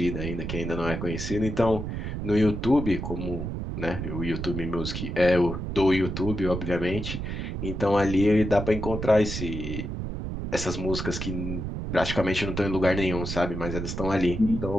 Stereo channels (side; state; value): right; noise; rumble, 5 dB below the sound